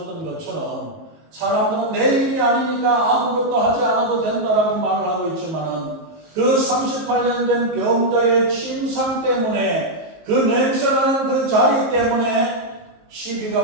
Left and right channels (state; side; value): late; left; 19 ms